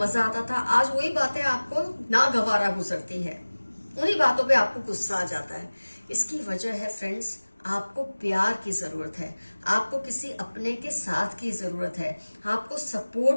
आता था, आज वही बातें आपको नागवारा गुजरती है। उन्हीं बातों पे आपको गुस्सा आ जाता है। इसकी वजह है फ्रेंड्स, आपको प्यार की जरूरत है, आपको किसी अपने के साथ की जरूरत है, आपको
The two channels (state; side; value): inverted; both; correlation -1.00